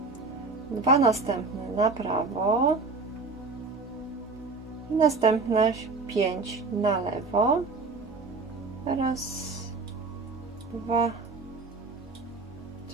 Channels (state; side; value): quieter; left; 4.0 dB